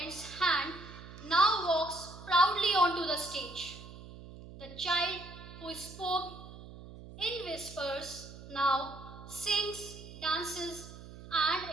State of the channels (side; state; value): right; noise; hum, 15 dB below the sound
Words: hand now walks proudly onto the stage. The child who spoke in whispers now sings, dances,